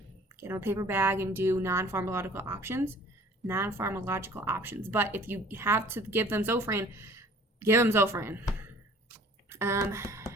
get them a paper bag and do non-pharmacological options. But if you have to give them Zofran, give them Zofran.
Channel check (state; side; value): normal; both; correlation 0.50